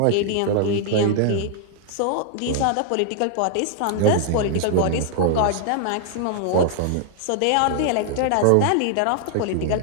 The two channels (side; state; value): both; different; correlation -0.01